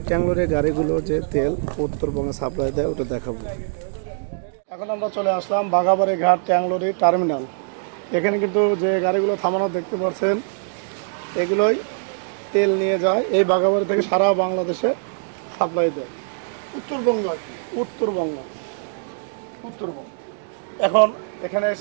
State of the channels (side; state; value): left; silent; digital silence